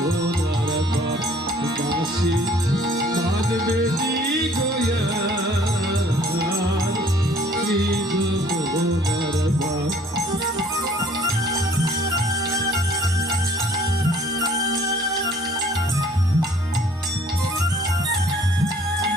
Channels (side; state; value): both; normal; correlation 0.56